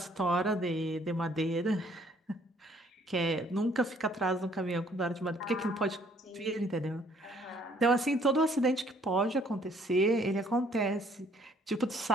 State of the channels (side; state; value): both; normal; correlation 0.62